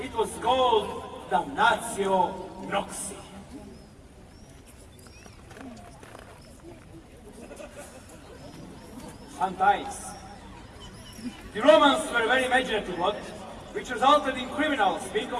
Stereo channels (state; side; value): identical; both; correlation 1.00